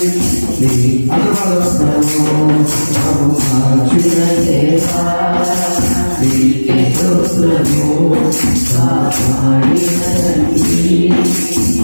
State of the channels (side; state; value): both; inverted; correlation -1.00